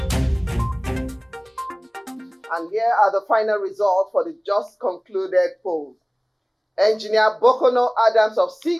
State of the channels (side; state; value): both; identical; correlation 1.00